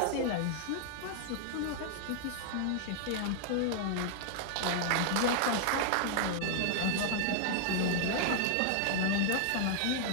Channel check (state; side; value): different; both; correlation -0.01